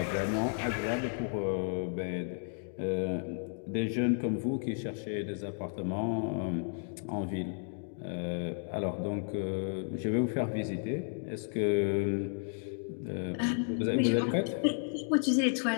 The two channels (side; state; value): right; silent; 56 dB below the other